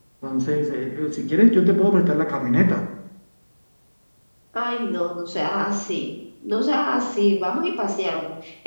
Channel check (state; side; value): inverted; both; correlation -1.00